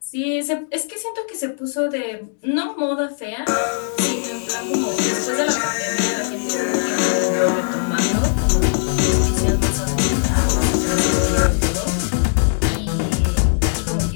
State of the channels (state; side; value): silent; right; 66 dB below the other